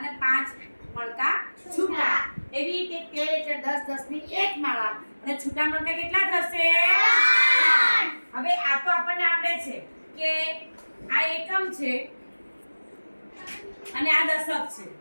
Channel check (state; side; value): inverted; both; correlation -1.00